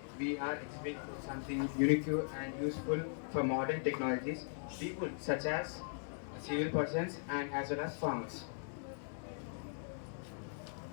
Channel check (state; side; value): silent; right; 52 dB below the other